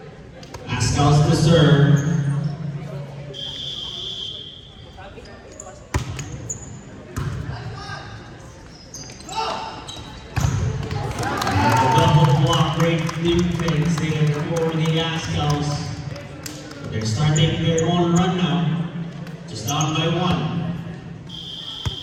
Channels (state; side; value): identical; both; correlation 1.00